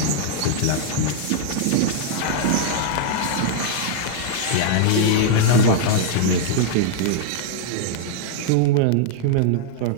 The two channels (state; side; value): different; both; correlation 0.00